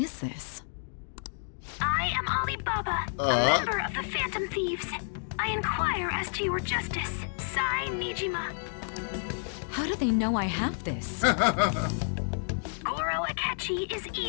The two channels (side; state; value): right; silent; digital silence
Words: this? I am Alibaba, a member of the Phantom Thieves. I inquire as to your justice, Sai Nijima. How do they know I have this? Goro Akechi is